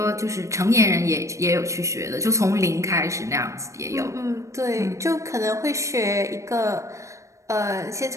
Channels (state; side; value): late; left; 0.15 ms